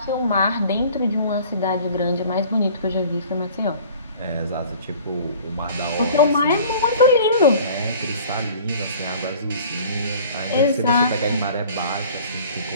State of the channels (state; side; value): inverted; both; correlation -0.48